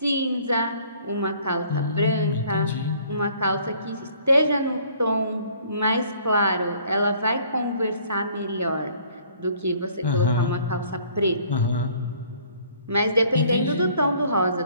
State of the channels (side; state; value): both; inverted; correlation -0.58